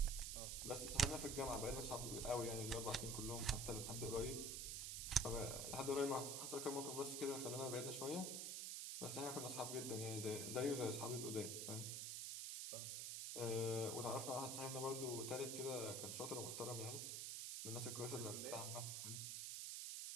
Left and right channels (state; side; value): noise; right; hiss, 2 dB below the sound